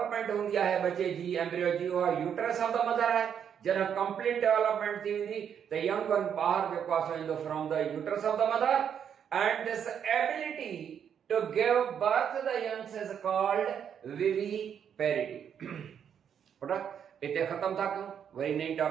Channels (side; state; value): left; quieter; 8.2 dB